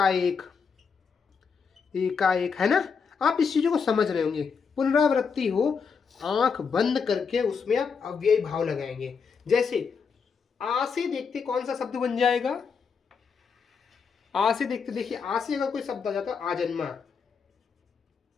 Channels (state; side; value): quieter; right; 5.8 dB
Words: एकाएक, है ना। आप इस चीजों को समझ रहे होंगे। पुनरावृत्ति हो, आंख बंद करके उसमें आप अव्ययी भाव लगाएंगे। जैसे आ से देखते कौन सा शब्द बन जाएगा? आ से देखते, देखिए आ से अगर कोई शब्द आ जाता है, आजन्मा।